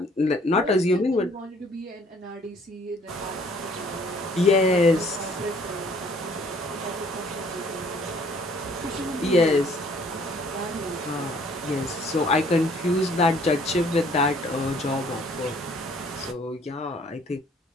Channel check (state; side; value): normal; both; correlation 0.59